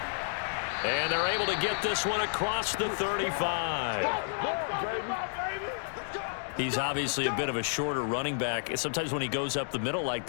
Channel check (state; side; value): silent; right; digital silence